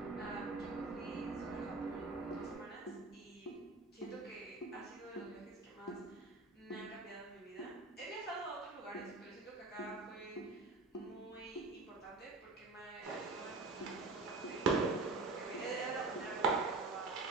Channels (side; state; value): left; quieter; 3.3 dB